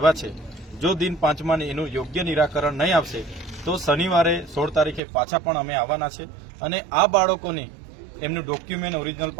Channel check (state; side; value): drops out; left; at 5.0 s